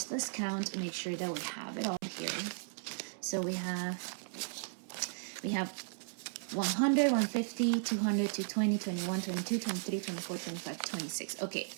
let's count, make sure that we have it all here. So we have 100, 150, 200, 220, 21, 22, 23, 24, 25, 26. Okay,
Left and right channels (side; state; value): left; silent; 54 dB below the other